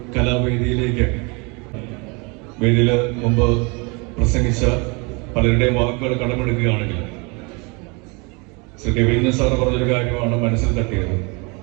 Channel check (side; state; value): left; quieter; 29.8 dB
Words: കലാവേദിയിലേക്ക്, വേദിയിൽ മുമ്പ് പ്രസംഗിച്ച പലരുടെയും വാക്കുകൾ കടമെടുക്കുകയാണെങ്കിൽ ശ്രീ രവീന്ദ്രൻ സാർ പറഞ്ഞൊരു കാര്യമാണ് മനസ്സിൽ തട്ടിയത്.